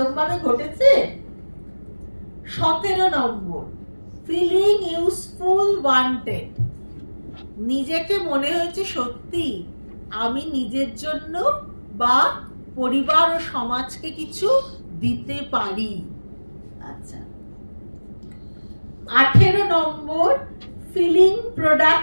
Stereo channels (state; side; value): inverted; both; correlation -1.00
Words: ভাবে ঘটেছে? 17 নম্বর, ফিলিং ইউজফুল ওয়ান্টেড, নিজেকে মনে হয়েছে সত্যি আমি নিজের জন্য বা পরিবার ও সমাজকে কিছু দিতে পারি। আচ্ছা, 18 নম্বর, ফিলিং